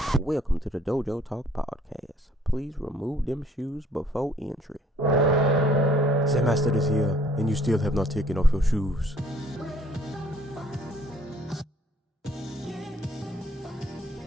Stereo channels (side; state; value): both; normal; correlation 0.60